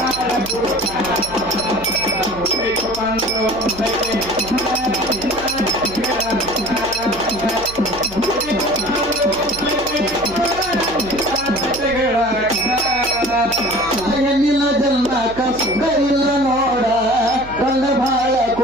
ಹೆಣ್ಣಿನ ಜನ್ಮಕ್ಕ ಸುಖ ಇಲ್ಲ ನೋಡ ಗಂಡ ಭಾಳ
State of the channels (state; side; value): noise; right; hum, 16 dB below the sound